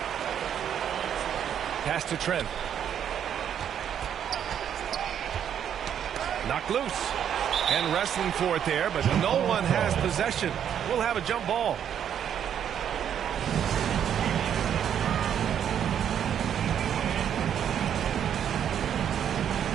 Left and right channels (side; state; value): left; quieter; 9.1 dB